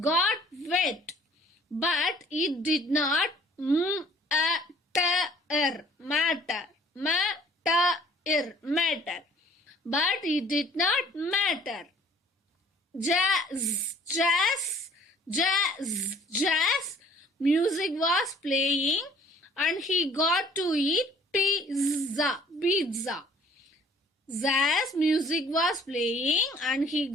wet, but it did not matter. But it did not matter. Jazz, music was playing and he got to eat pizza. Jazz music was playing and he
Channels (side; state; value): both; normal; correlation 0.55